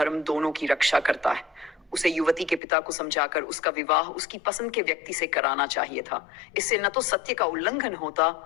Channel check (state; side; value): drops out; right; at 2.6 s